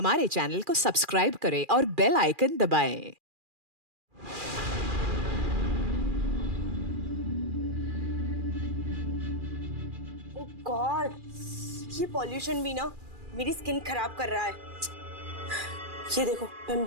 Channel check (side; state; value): left; late; 2.4 ms